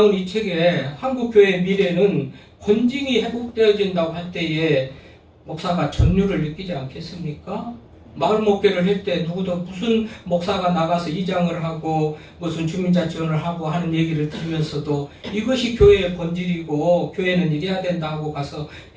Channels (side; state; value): both; identical; correlation 1.00